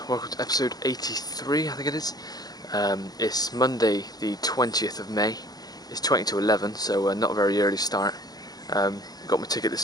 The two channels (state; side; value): late; right; 0.19 ms